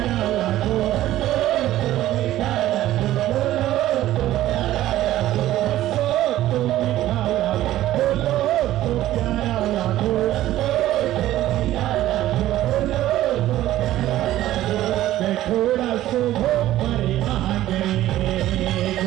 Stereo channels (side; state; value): left; quieter; 14.2 dB